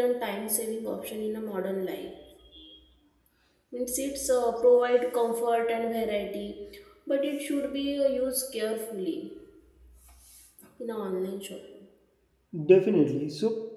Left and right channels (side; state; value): both; identical; correlation 1.00